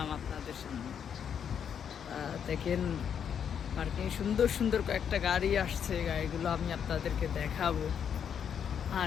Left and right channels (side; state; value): right; quieter; 8.0 dB